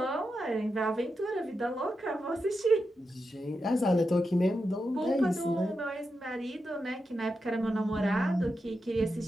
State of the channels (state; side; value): normal; both; correlation 0.88